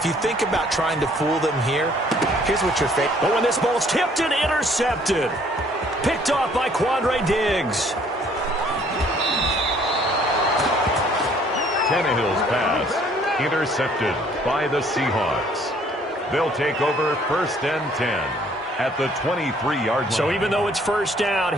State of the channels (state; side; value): normal; both; correlation 0.60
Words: you think about trying to fool them here, here's what you're facing. Oh, and this ball's tipped and intercepted. Picked off by Quandre Diggs. Tannehill's pass intercepted by the Seahawks. They'll take over 1st and 10. At the 23-yard line. So even though it's first down,